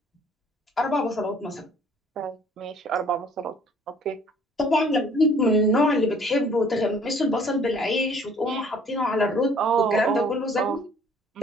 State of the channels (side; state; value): both; normal; correlation 0.57